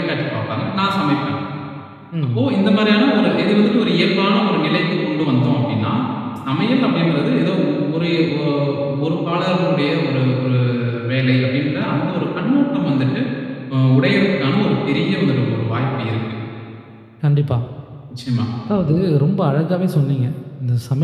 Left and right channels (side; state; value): both; identical; correlation 1.00